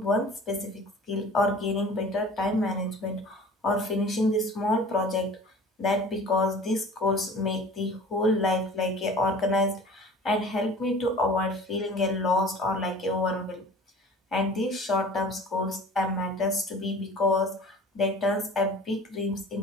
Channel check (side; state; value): both; normal; correlation 0.43